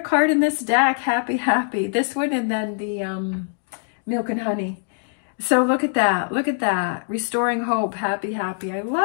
card in this deck, happy, happy. This one, and then the milk and honey. So look at that. Look at that. Restoring hope, happy, happy. I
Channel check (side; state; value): right; silent; digital silence